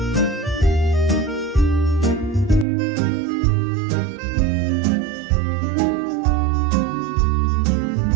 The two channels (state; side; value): drops out; left; at 2.7 s